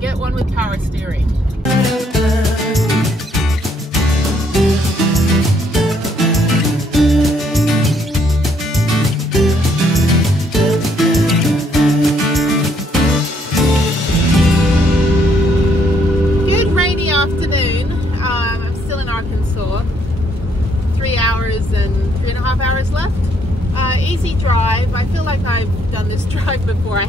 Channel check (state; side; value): normal; both; correlation 0.69